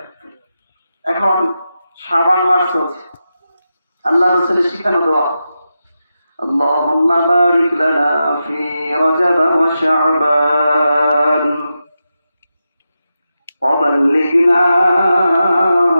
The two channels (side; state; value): both; inverted; correlation -0.89